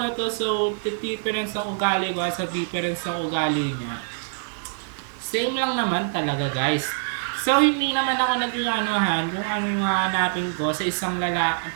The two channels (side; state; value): left; silent; digital silence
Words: to, so, difference ng ugali ko sa difference ng ugali niya. Same lang naman talaga guys. So, hindi naman ako nag-anuhan kung ano yung hahanapin ko sa isang